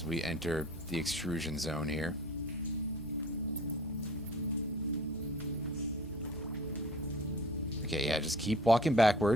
we enter the extrusion zone here. Okay, yeah, just keep walking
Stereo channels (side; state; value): both; normal; correlation 0.47